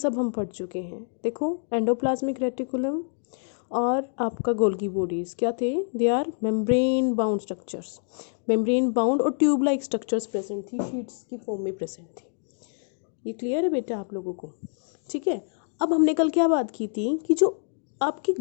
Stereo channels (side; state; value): right; silent; 61 dB below the other